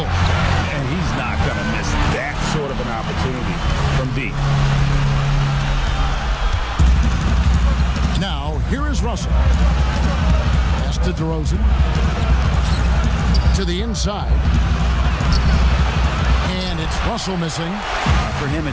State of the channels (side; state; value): both; identical; correlation 1.00